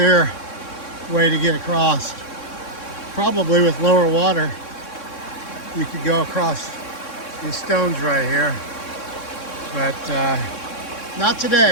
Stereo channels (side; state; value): right; late; 3.6 ms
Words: way to get across. Probably with lower water, you could go across these stones right here. But not